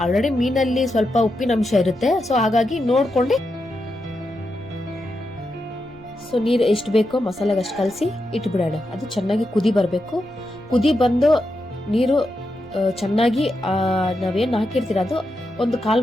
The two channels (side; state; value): right; noise; rumble, 24 dB below the sound